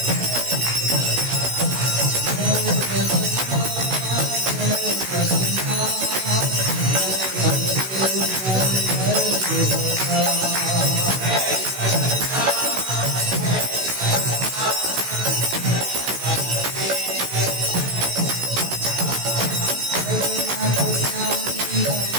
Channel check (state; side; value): late; left; 16 ms